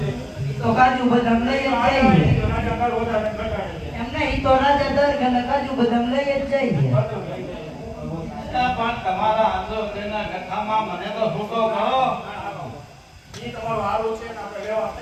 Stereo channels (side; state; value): both; identical; correlation 1.00